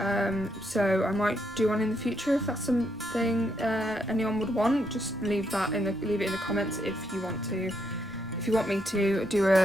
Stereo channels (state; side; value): normal; both; correlation 0.77